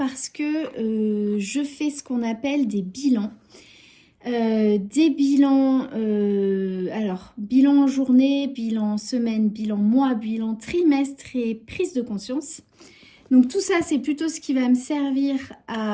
que je fais ce qu'on appelle des bilans. Des bilans, alors bilan journée, bilan semaine, bilan mois, bilan trimestre et prise de conscience. Donc tout ça, c'est plutôt ce qui va me servir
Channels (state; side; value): identical; both; correlation 1.00